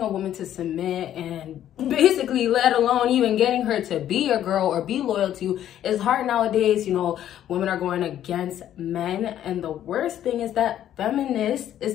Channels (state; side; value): quieter; right; 11.3 dB